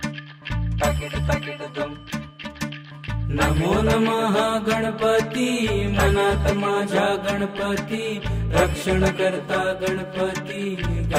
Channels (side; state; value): both; identical; correlation 1.00